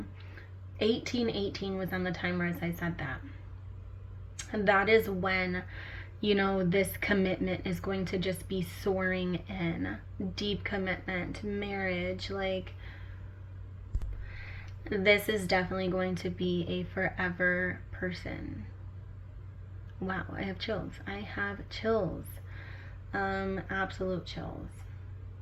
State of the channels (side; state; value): both; identical; correlation 1.00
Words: 1818 was on the timer as I said that. And that is when, you know, this commitment is going to just be soaring in. Deep commitment, marriage, like, this is definitely going to be a forever person. Wow, I have chills. I have chills. Absolute chills.